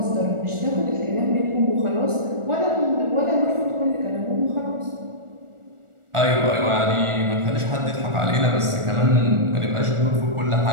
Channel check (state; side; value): late; left; 1.4 ms